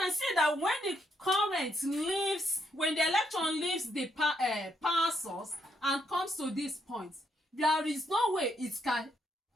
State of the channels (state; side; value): normal; both; correlation 0.76